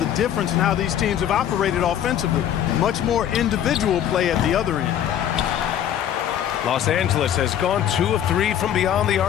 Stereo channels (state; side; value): quieter; right; 10.2 dB